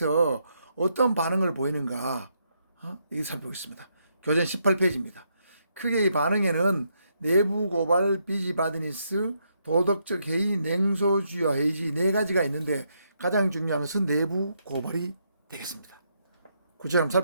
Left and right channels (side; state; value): both; inverted; correlation -0.77